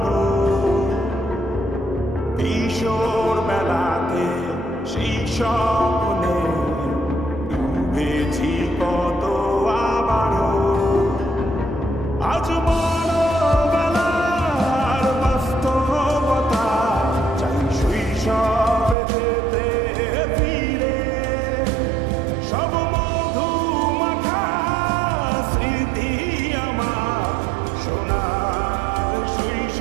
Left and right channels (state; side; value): drops out; left; at 18.9 s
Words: কিশোর বেলাতে সেই স্বপ্নে ডুবেছি কত আবারও। আজ বড়বেলার বাস্তবতা, চাই শৈশবে যেতে ফিরে। সব মধু মাখা স্মৃতি আমার সোনার